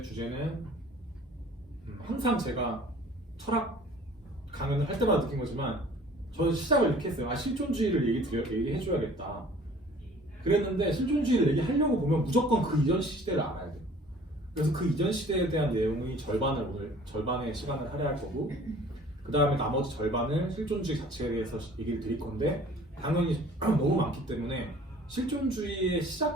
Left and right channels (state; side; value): normal; both; correlation 0.50